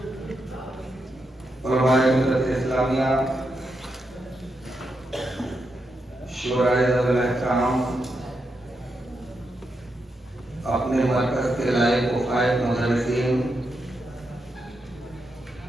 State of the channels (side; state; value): both; normal; correlation 0.84